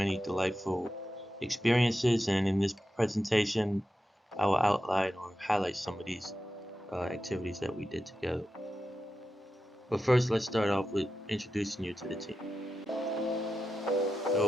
delightful experiences, and in this presentation, I will outline or highlight some of these activities that we did together. But first, let's start off with introducing you to the team.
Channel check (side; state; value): both; normal; correlation 0.91